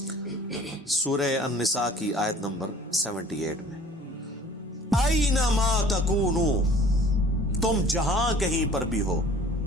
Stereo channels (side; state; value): both; normal; correlation 0.50